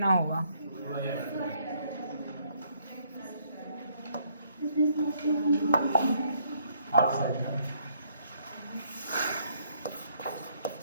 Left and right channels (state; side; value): inverted; both; correlation -0.68